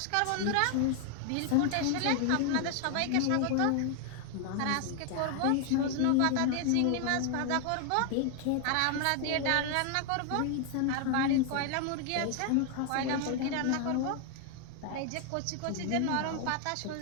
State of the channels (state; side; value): different; both; correlation 0.00